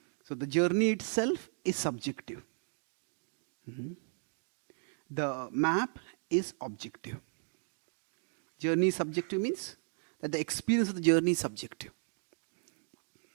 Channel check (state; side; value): silent; left; 54 dB below the other